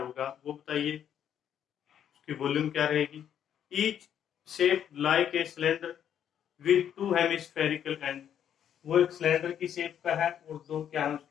वो बताइए। उसकी वॉल्यूम क्या रहेगी। Each shape like a cylinder with two hemispherical and. वो एक सिलेंडर की शेप का है और दो क्या है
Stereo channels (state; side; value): quieter; right; 9.4 dB